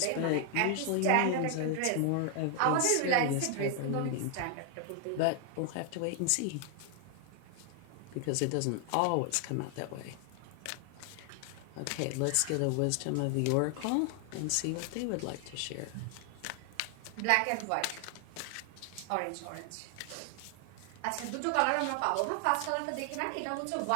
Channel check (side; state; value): both; different; correlation 0.00